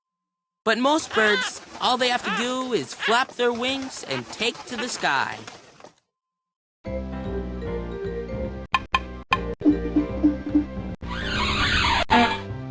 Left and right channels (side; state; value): both; identical; correlation 1.00